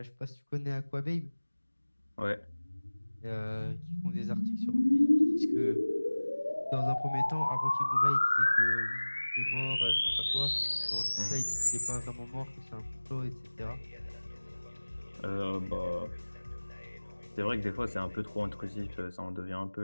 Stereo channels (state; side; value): inverted; both; correlation -1.00